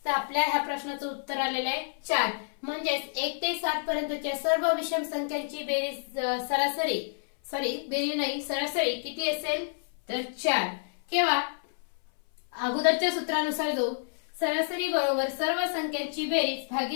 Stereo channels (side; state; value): right; silent; 59 dB below the other